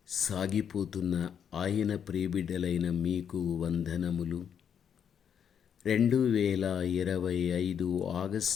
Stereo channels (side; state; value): right; quieter; 8.1 dB